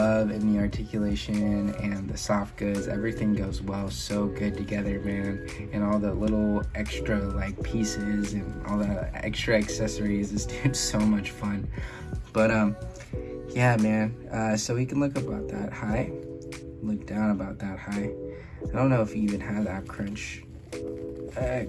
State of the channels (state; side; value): identical; both; correlation 1.00